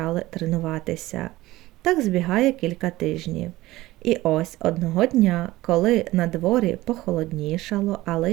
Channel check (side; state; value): left; quieter; 17.7 dB